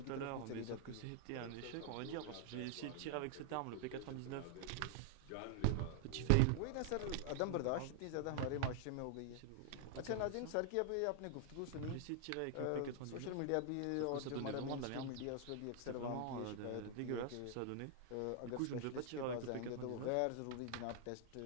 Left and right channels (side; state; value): both; different; correlation 0.00